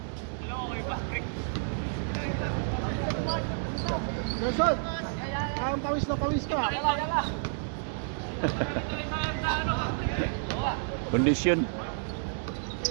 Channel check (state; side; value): silent; left; digital silence